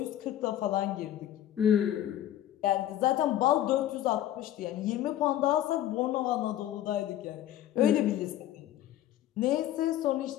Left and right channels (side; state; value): right; quieter; 12.5 dB